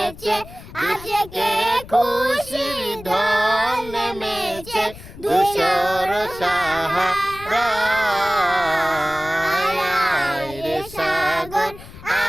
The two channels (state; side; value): noise; left; rumble, 17 dB below the sound